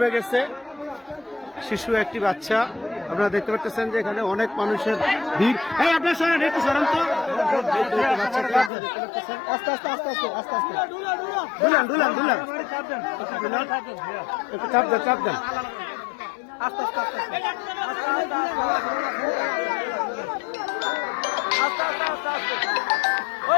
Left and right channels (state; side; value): drops out; right; at 8.7 s